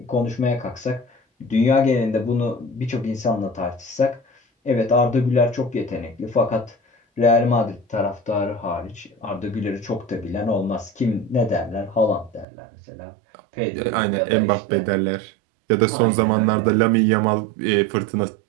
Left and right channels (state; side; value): drops out; left; at 12.5 s